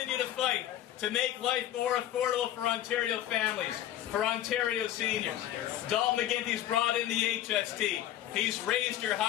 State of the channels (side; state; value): right; quieter; 12.5 dB